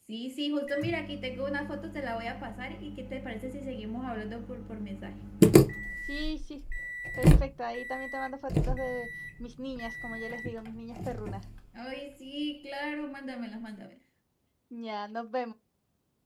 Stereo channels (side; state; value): both; identical; correlation 1.00